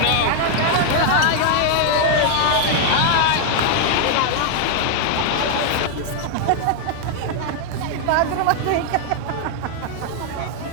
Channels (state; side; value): different; both; correlation 0.00